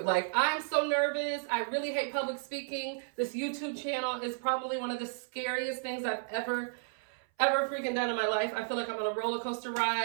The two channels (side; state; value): left; silent; 56 dB below the other